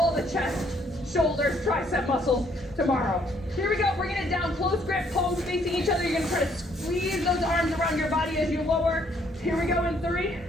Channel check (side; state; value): both; normal; correlation 0.66